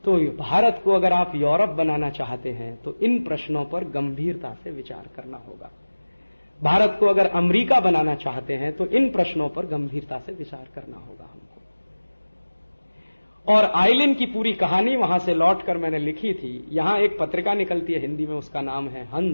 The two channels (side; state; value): both; inverted; correlation -1.00